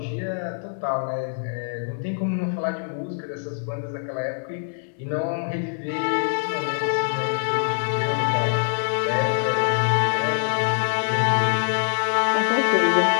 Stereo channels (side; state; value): right; silent; digital silence